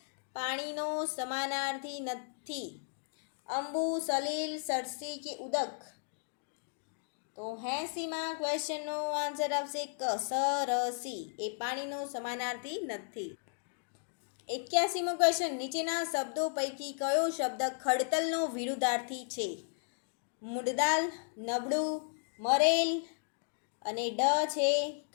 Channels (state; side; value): silent; right; digital silence